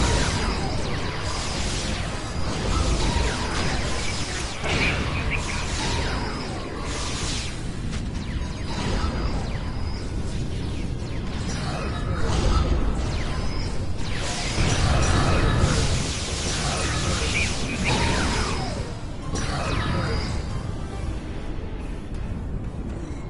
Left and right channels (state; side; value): identical; both; correlation 1.00